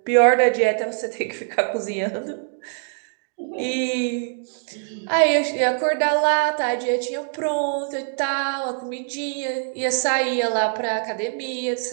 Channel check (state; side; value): silent; left; digital silence